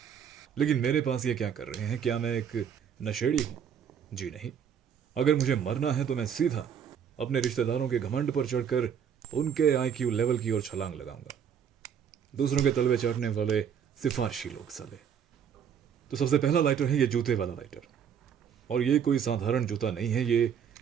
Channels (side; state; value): left; quieter; 8.0 dB